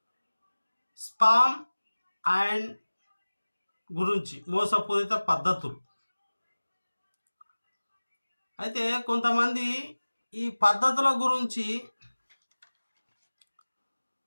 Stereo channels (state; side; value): inverted; both; correlation -1.00